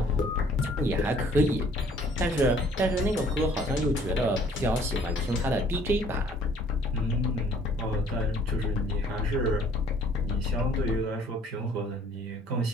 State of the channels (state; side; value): normal; both; correlation 0.57